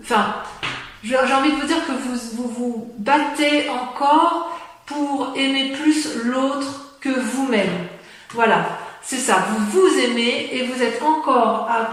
j'ai envie de vous dire que vous battez encore pour aimer plus l'autre que vous-même. Voilà, c'est ça, vous vous aimez et vous êtes encore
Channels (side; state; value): both; identical; correlation 1.00